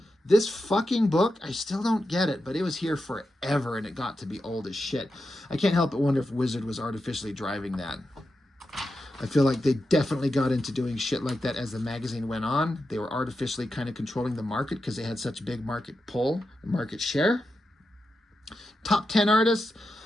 This fucking book, I still don't get it, but it was here forever, and it got to be old as shit. I can't help but wonder if Wizard was artificially driving that. I feel like they definitely got into doing shit like that as the magazine went on. They were artificially kind of controlling the market because they had such a big market pull, market share. Top 10 artists,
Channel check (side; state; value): both; normal; correlation 0.89